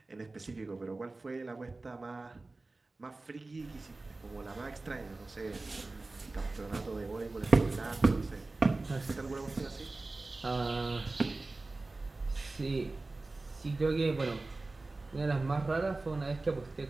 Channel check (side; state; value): left; quieter; 3.3 dB